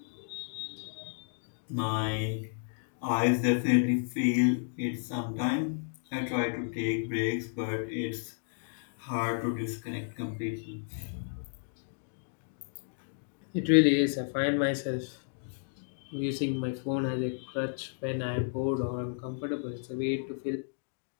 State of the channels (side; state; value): right; silent; digital silence